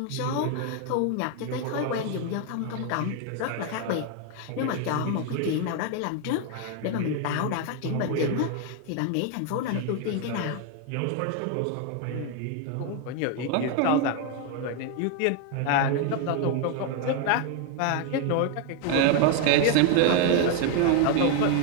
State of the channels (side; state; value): both; different; correlation 0.01